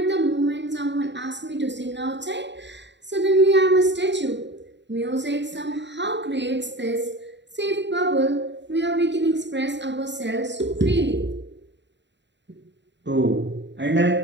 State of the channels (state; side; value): late; left; 0.52 ms